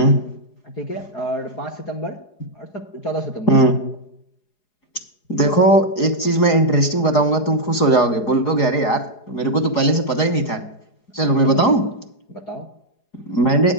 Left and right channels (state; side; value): late; right; 4.8 ms